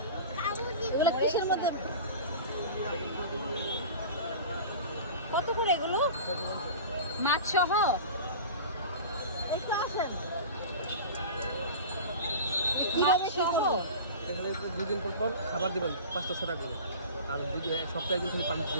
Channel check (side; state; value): both; inverted; correlation -0.34